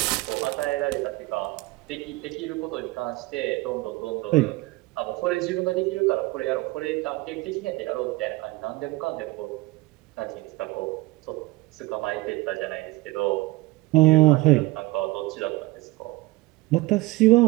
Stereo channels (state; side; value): quieter; left; 21.6 dB